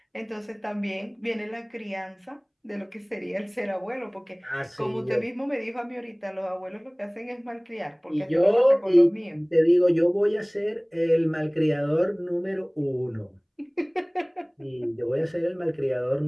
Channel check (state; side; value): identical; both; correlation 1.00